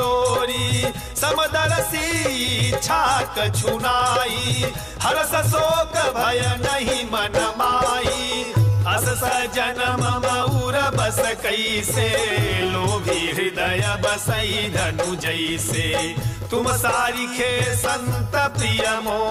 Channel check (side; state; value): both; identical; correlation 1.00